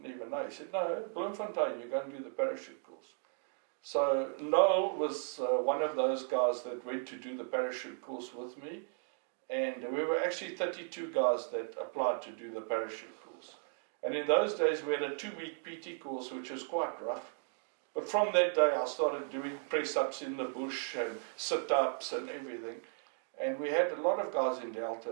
even know. He said, no, Bloemfontein, you're going to do the parachute course. So Noel was one of those guys that went to do the parachute course with me, and we were actually 32 guys that applied to do the parachute course. And in those days we had a 2-week PT course, which was quite rough. But from that day I started doing press-ups in the bush and sit-ups and everything. And we had a lot of guys in Delta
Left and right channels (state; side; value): silent; left; 54 dB below the other